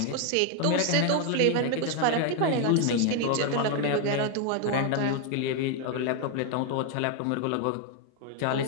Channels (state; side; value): different; both; correlation 0.01